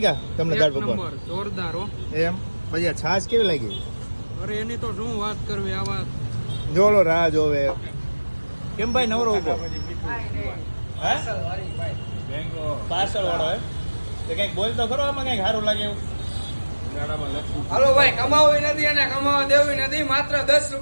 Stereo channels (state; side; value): inverted; both; correlation -1.00